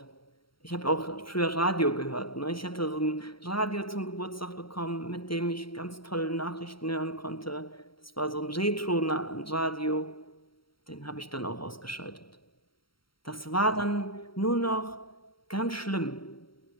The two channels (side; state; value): right; late; 0.74 ms